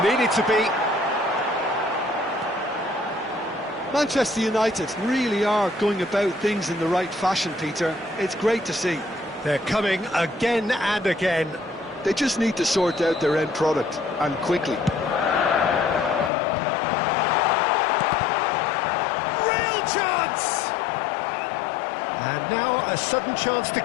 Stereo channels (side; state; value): right; drops out; at 16.3 s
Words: Needed to be. Manchester United really are going about things in the right fashion, Peter. It's great to see. They're coming again and again. They just need to sort out their end product, and quickly. Real chance! And now a sudden chance to